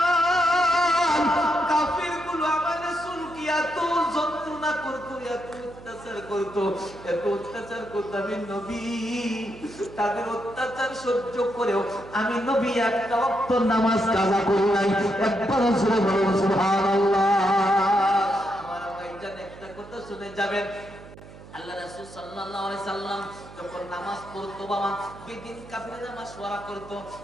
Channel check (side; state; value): right; noise; hum, 18 dB below the sound